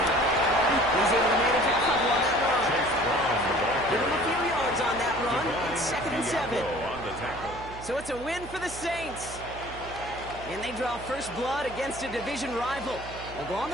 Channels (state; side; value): noise; right; hum, 15 dB below the sound